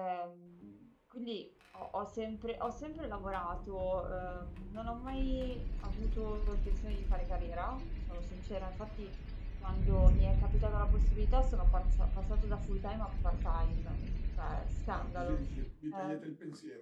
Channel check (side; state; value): both; identical; correlation 1.00